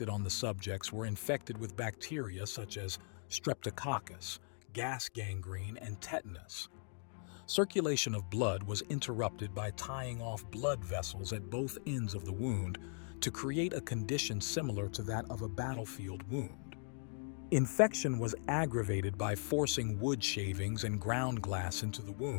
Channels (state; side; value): silent; right; 52 dB below the other